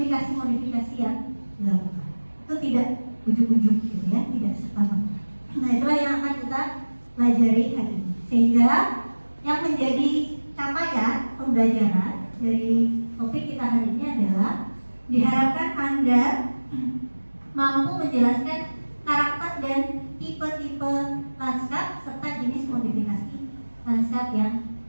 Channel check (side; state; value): both; inverted; correlation -1.00